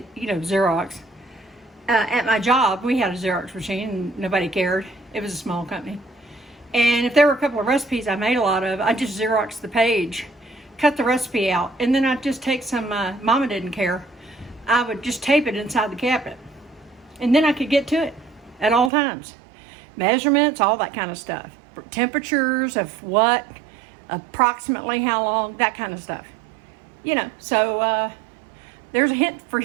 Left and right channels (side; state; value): left; drops out; at 18.9 s